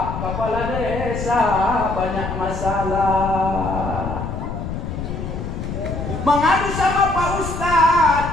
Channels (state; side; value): noise; left; rumble, 5 dB below the sound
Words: Kepala Desa banyak masalah. Mengadu sama Pak